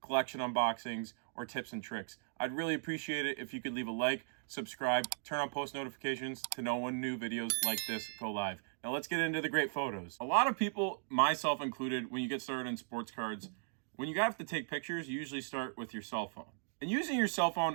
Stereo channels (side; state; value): left; silent; digital silence